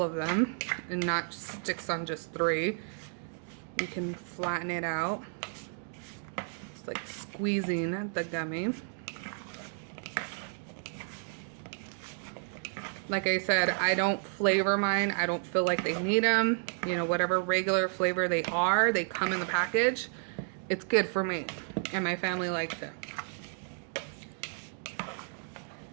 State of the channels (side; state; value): left; silent; 56 dB below the other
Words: of them and not sticks on just 3. You can flatten it out. It's like squeezing the gummy. Like I said, I don't flavor mine. I don't feel like they need them. You know, whatever regular flavor they are, they come in the package. It's good for me, and my family likes it.